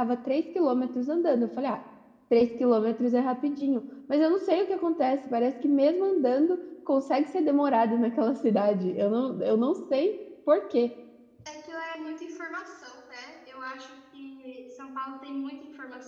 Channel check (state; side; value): identical; both; correlation 1.00